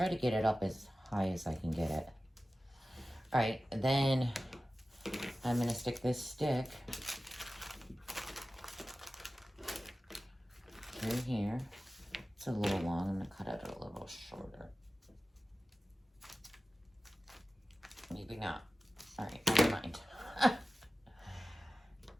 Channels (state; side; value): normal; both; correlation 0.96